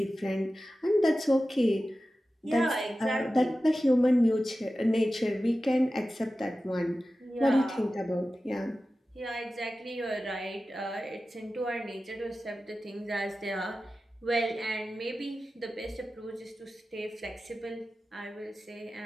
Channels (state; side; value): normal; both; correlation 0.94